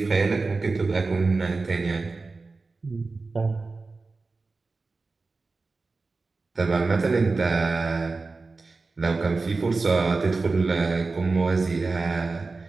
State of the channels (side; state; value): left; quieter; 3.8 dB